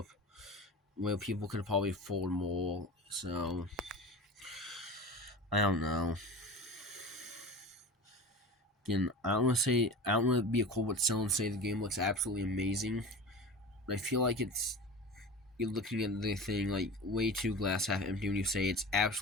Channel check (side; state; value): both; normal; correlation 0.33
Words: where people could probably afford more. So I don't know. Again, I don't want to be a COVID seller and say the game looks absolutely amazing, but I feel like you're looking at the thing like way too glass half empty when you say it's